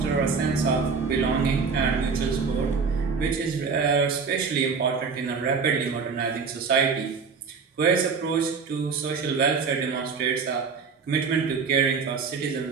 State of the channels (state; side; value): quieter; left; 5.3 dB